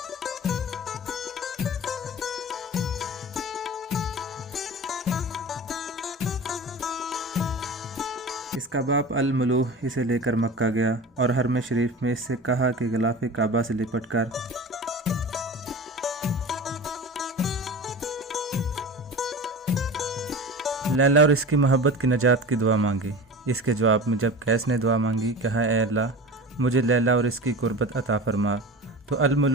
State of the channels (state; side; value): normal; both; correlation 0.33